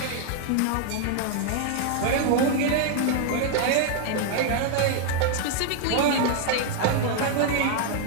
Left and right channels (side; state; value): both; different; correlation 0.00